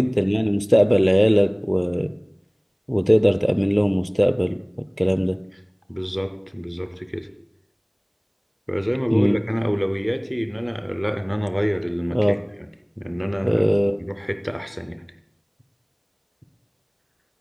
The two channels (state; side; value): identical; both; correlation 1.00